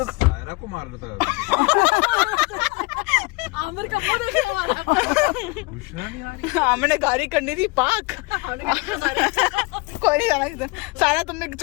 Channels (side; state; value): right; quieter; 26.1 dB